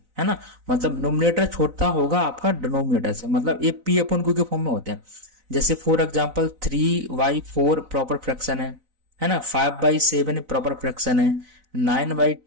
है ना। मतलब नोमिनेटर छोटा होगा आपका डिनोमिनेटर से, मतलब ये P अपॉन Q के फॉर्म में होते हैं। जैसे फॉर एग्जाम्पल 3/4 प्रॉपर फ्रैक्शन है ना, 5/7 प्रॉपर फ्रैक्शन है,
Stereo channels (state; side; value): late; left; 4.0 ms